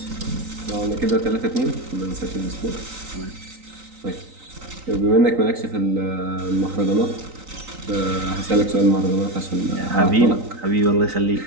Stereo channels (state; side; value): late; left; 3.9 ms